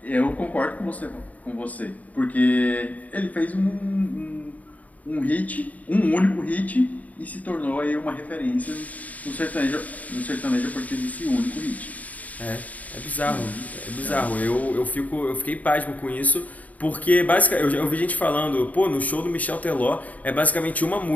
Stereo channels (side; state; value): right; late; 0.073 ms